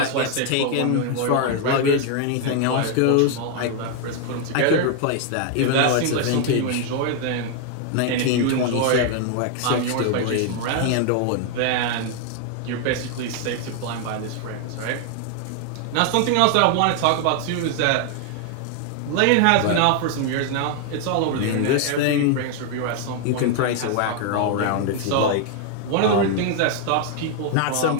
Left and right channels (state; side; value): different; both; correlation 0.00